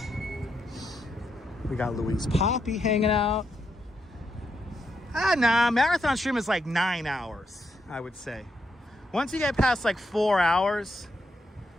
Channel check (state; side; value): normal; both; correlation 0.81